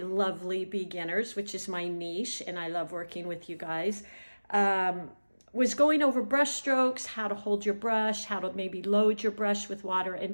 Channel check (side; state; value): both; inverted; correlation -1.00